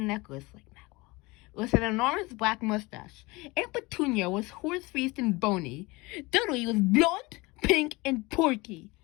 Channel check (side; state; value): right; quieter; 23.5 dB